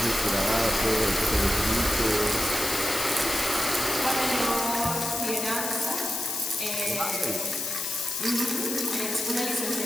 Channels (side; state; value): left; noise; hiss, 3 dB below the sound